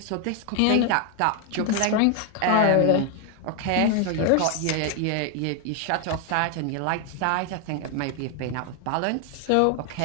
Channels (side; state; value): both; different; correlation 0.01